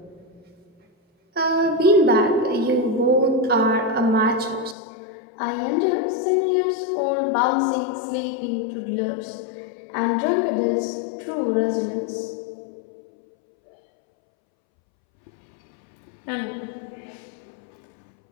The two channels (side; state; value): right; drops out; at 4.8 s